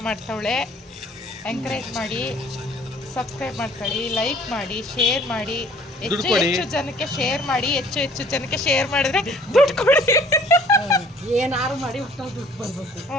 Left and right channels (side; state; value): both; normal; correlation 0.55